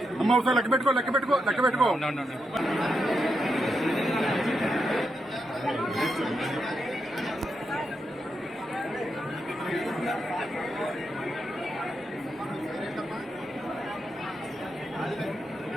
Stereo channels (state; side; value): normal; both; correlation 0.84